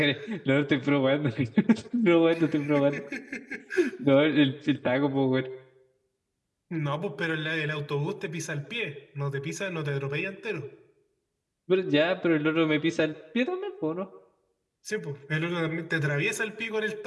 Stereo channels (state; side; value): identical; both; correlation 1.00